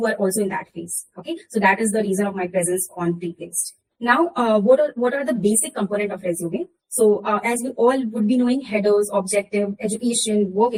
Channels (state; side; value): identical; both; correlation 1.00